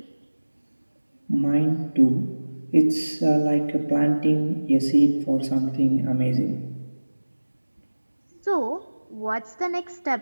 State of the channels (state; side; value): inverted; both; correlation -1.00